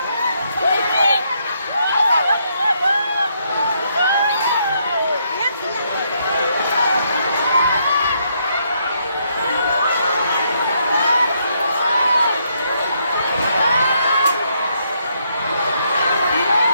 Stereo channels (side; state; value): both; inverted; correlation -0.74